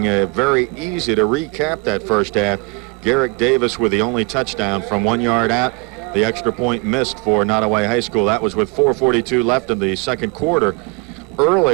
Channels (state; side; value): quieter; left; 27.8 dB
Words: Very easy to recap that first half. Garrick Davis with the only touchdown from 1 yard out. The extra point missed for Nottoway High School. That was with 4:42 left in the second quarter.